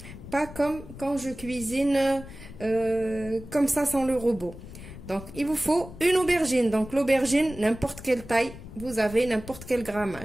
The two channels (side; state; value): left; noise; rumble, 14 dB below the sound